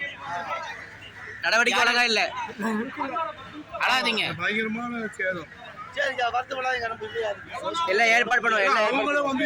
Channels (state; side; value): identical; both; correlation 1.00